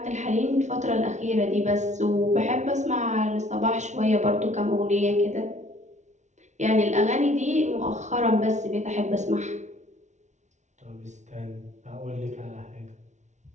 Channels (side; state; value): left; late; 0.34 ms